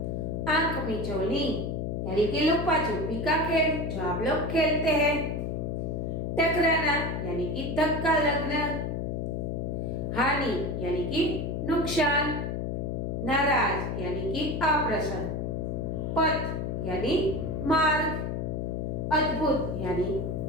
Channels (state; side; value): noise; left; hum, 2 dB below the sound